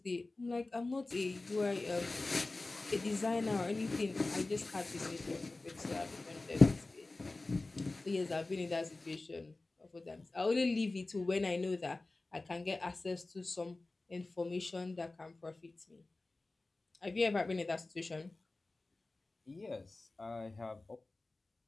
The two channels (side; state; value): right; quieter; 3.2 dB